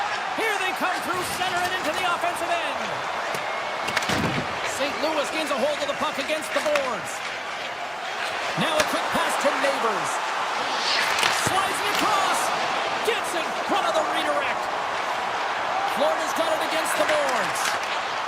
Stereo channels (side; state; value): both; identical; correlation 1.00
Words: Here they come through center and into the offensive end. St. Louis gains a hold of the puck against the boards. Now a quick pass to Neighbors. Slides it across. Gets in front of the redirect. Florida's got it against the boards.